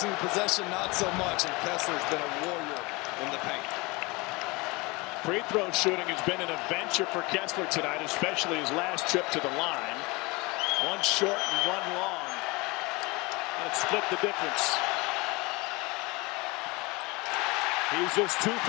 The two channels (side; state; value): right; quieter; 25.0 dB